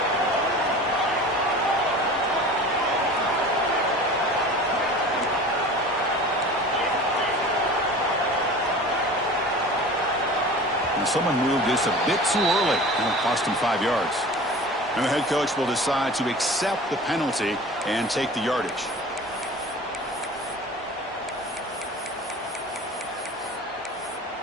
Someone moved this a bit too early, and it cost him 5 yards. And the head coach will decide to accept the penalty and take the yardage.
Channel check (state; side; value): normal; both; correlation 0.39